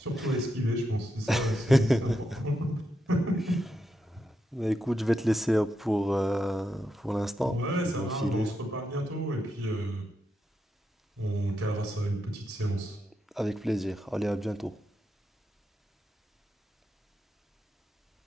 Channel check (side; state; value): both; normal; correlation 0.85